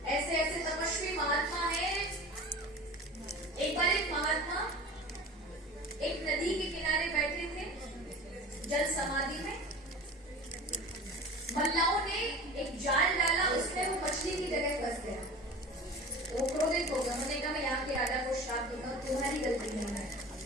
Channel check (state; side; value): normal; both; correlation 0.37